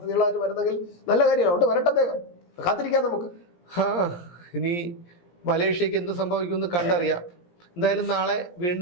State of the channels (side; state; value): right; late; 17 ms